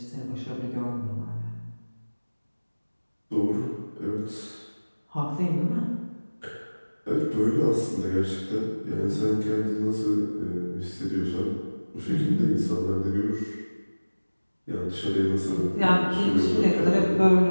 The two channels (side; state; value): both; inverted; correlation -1.00